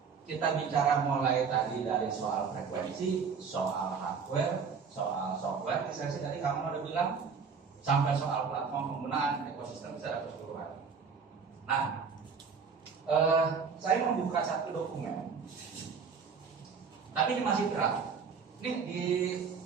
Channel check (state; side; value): quieter; left; 5.8 dB